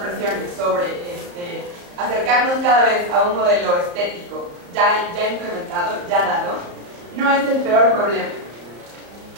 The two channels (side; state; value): left; late; 34 ms